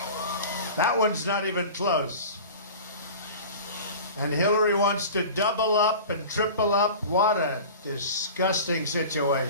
That one's not even close. And Hillary wants to double up and triple up. What a disgusting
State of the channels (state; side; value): inverted; both; correlation -0.36